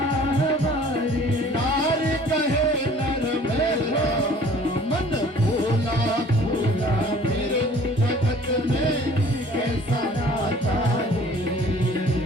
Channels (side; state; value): both; normal; correlation 0.51